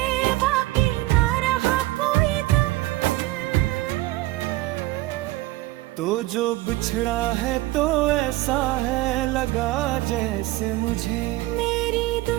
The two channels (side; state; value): left; quieter; 18.4 dB